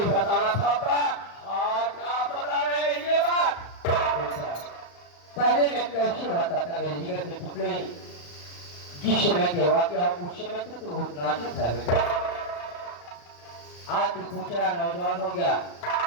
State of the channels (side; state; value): right; late; 35 ms